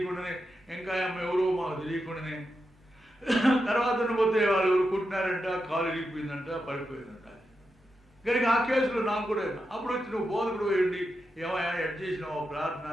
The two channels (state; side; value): normal; both; correlation 0.87